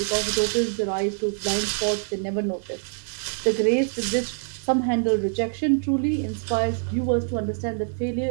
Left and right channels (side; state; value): left; silent; 62 dB below the other